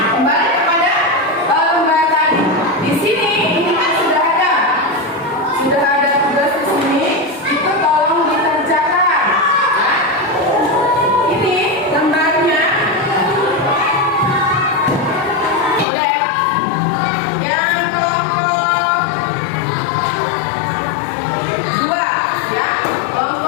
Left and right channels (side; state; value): right; drops out; at 15.9 s